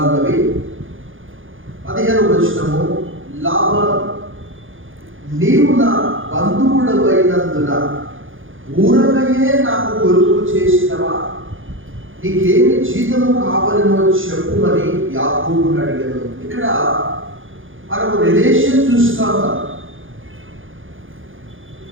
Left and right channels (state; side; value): late; left; 0.58 ms